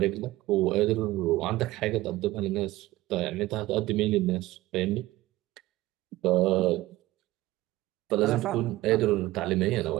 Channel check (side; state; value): left; quieter; 17.5 dB